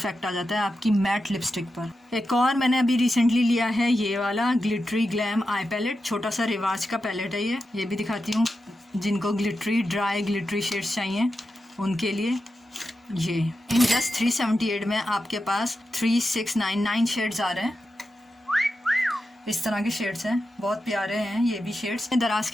आ जाता है आपकी मैट लिपस्टिक पर। एक और मैंने अभी रिसेंटली लिया है ये वाला ग्लिटरी ग्लैम आई पैलेट। छोटा सा रिवाज का पैलेट है ये भी दिखाती हूँ। जिनको ग्लिटरी ड्राई ग्लिटरी शेड्स चाहिए उनके लिए ये। इन जस्ट 378 में आपके पास 3699 शेड्स आ रहे हैं। इस तरह के शेड्स हैं, बहुत प्यारे हैं ये भी शेड्स। दराज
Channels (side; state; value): both; normal; correlation 0.90